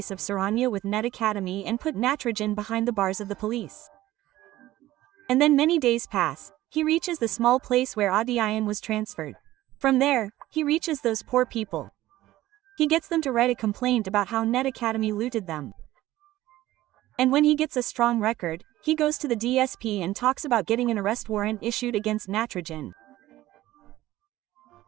of Saranya with Net Academy and put Natarajan behind the bars of the police. And then many days pass, he reaches the small place where Vettaiyan was transferred. From there, he reaches those poor people. He gets them to write a complaint about how Net Academy looted them. And when he gets a strong record, he goes to the DSP and talks about getting an arrest warrant issued against Natarajan.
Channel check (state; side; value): quieter; left; 15.6 dB